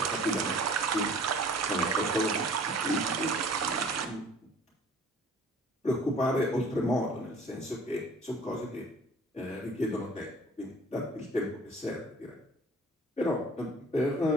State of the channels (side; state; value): both; normal; correlation 0.50